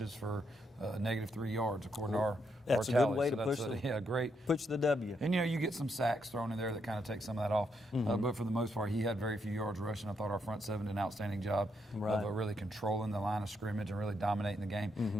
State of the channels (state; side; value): normal; both; correlation 0.78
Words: for -3 yards, according to our That's tally. a good way to push push the W. And, you get some sacks thrown in there that kind of take some of that off. But for the most part, he had very few yards rushing. I thought our front seven did an outstanding job of really controlling the line of scrimmage and really dominating the game.